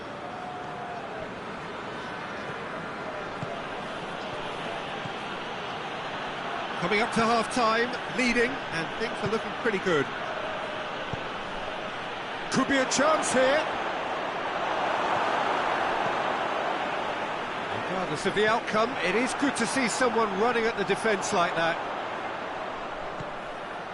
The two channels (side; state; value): both; identical; correlation 1.00